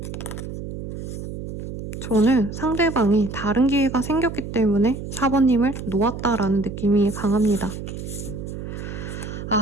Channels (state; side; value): noise; right; hum, 8 dB below the sound